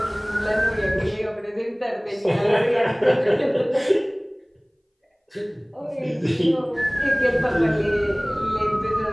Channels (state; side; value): identical; both; correlation 1.00